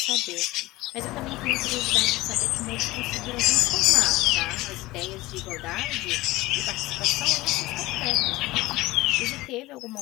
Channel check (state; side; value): quieter; right; 19.2 dB